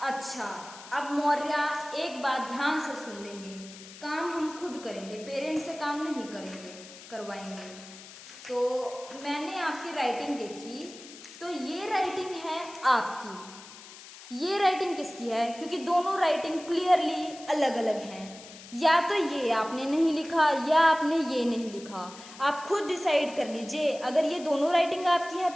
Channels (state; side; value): noise; left; hiss, 17 dB below the sound